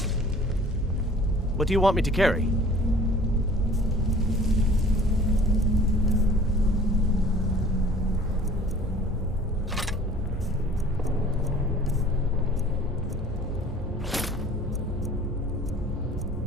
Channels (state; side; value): normal; both; correlation 0.49